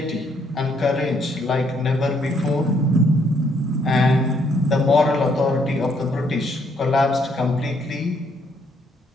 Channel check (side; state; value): both; normal; correlation 0.69